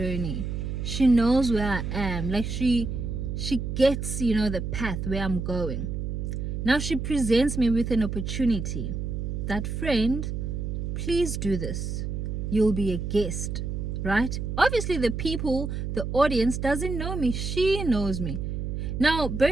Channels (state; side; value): noise; right; hum, 3 dB below the sound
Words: She knows where I am. Like, she she gets, the path where I'm going. Now she presents me with an opportunity. That, friend, please do this. You'll be a guest, right? Obviously the audience doesn't know me. She knows me. Now,